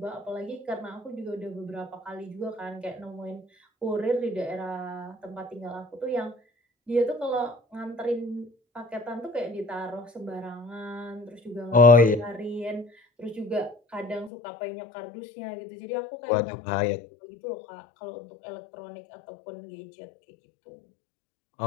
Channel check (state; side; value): drops out; right; at 14.3 s